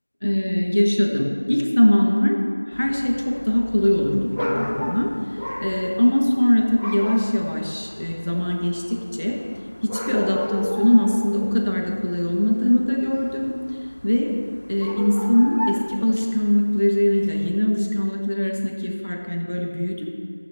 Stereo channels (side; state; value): both; inverted; correlation -1.00